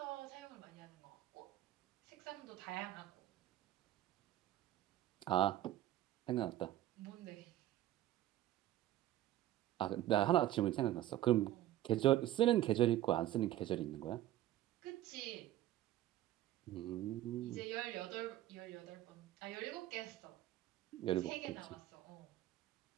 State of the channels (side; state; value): left; quieter; 13.8 dB